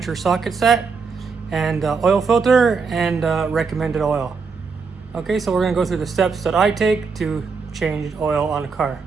or socket set, and oil filter and recommended oil. Okay, so we're going to go through the steps that I take to change oil on a car.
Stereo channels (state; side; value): quieter; left; 5.1 dB